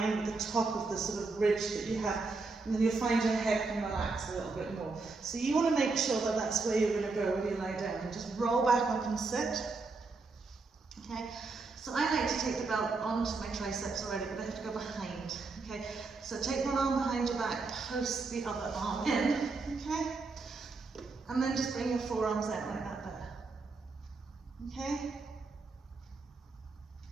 with the top of the sort of ridge that you have, and then you'll find your head can relax a little bit more. So you want to make sure that that's where you're going to go when you lie down. Just roll back up and sit, okay? So I like to take the belt onto my triceps already, but I have to go behind, okay? So take one arm behind your back, post the other arm in, okay? And then just bring your forearms out like that there, okay?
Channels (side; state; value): left; quieter; 3.9 dB